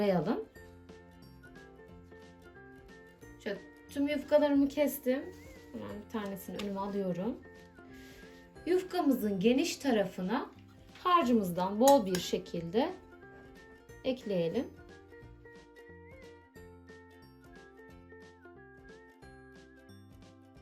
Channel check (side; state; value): both; identical; correlation 1.00